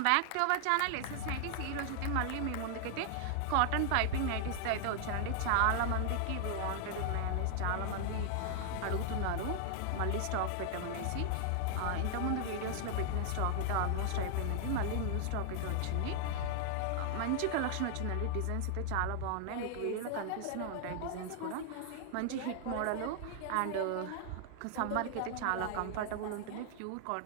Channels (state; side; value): different; both; correlation 0.00